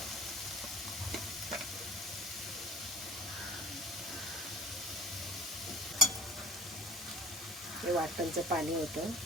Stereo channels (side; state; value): both; normal; correlation 0.45